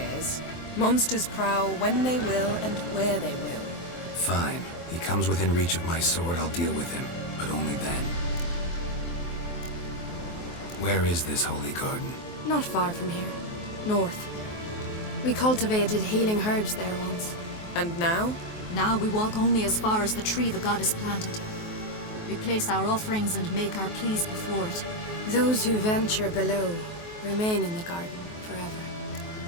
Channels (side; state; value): right; late; 23 ms